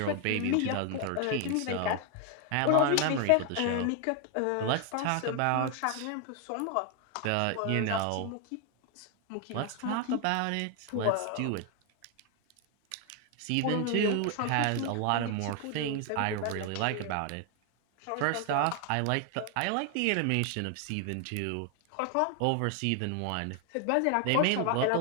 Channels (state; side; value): different; both; correlation 0.01